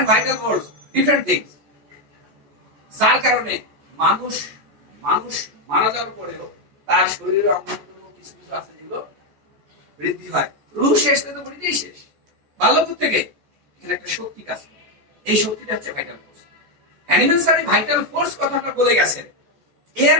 vital force different things. যার কারণে মানুষ মারা যাওয়ার পরেও তার শরীরে অঙ্গ কিছু কিছু আছে যেগুলো বৃদ্ধি হয়। রুহ শেষ তো বৃদ্ধিই শেষ। বাল্যকাল থেকে এখানে একটা শক্তি কাজ করে, এই শক্তিটা হচ্ছে vital force. Hahnemann sir vital force কথাটা বলে গেছেন। এর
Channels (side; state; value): left; late; 14 ms